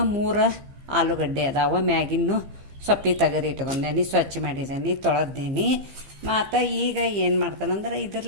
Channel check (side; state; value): left; late; 15 ms